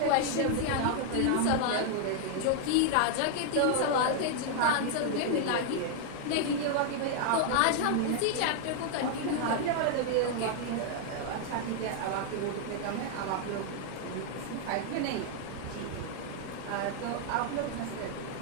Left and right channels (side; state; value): both; different; correlation 0.00